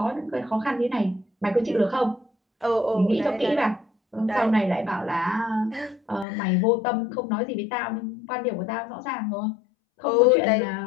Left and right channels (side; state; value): right; drops out; at 6.2 s